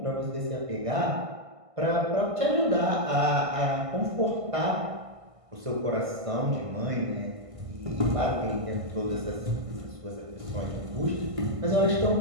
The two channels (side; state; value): left; late; 1.5 ms